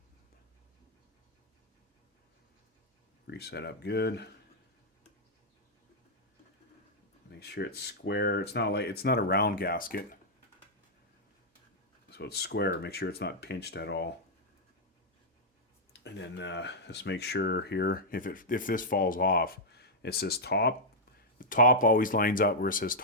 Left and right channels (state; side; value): normal; both; correlation -0.06